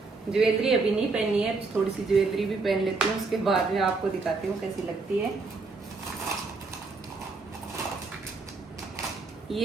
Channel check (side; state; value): left; quieter; 4.0 dB